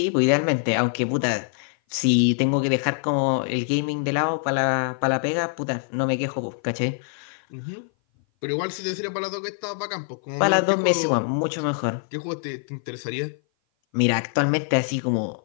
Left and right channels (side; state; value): right; silent; 57 dB below the other